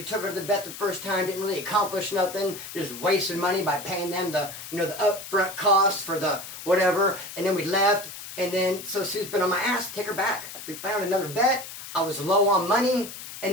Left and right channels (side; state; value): left; noise; hiss, 12 dB below the sound